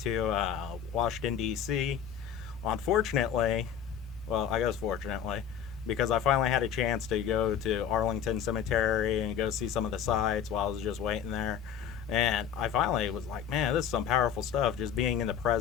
Washington, D.C. Unfortunately, well, I guess fortunately, because I finally had a chance to go to Arlington Cemetery and go see some of the sites while I was just waiting there. And I finally was like, man, this is some powerful stuff, just being in the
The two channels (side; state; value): right; quieter; 8.5 dB